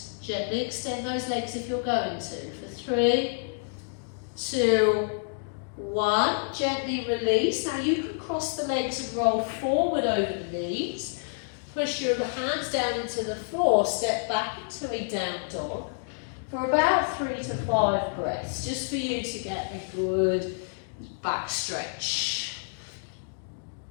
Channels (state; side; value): silent; right; digital silence